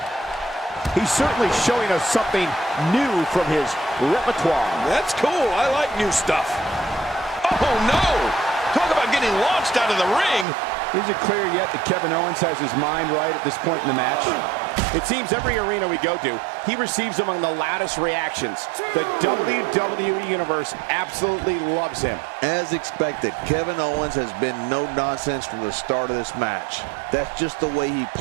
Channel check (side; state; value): left; drops out; at 10.5 s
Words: He's certainly showing us something new from his repertoire. That's cool. I like new stuff. Oh, no! Talk about getting launched out of the ring. Is it clear yet that Kevin Owens has his mind right at this point in the match? It seems every arena we go to, he receives among the loudest reactions. The WWE Universe absolutely loves him. As expected, Kevin Owens has been no nonsense from the start of this match. That's just the way he